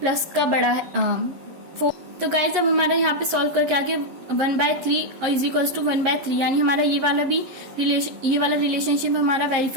का बड़ा है 4। तो गाइस अब हमारा यहाँ पे सॉल्व करके आके 1/3 और = 1/3, यानी हमारा ये वाला रिलेशनशिप हमारा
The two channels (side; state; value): left; late; 11 ms